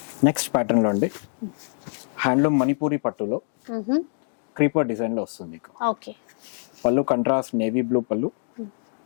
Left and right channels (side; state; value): right; silent; digital silence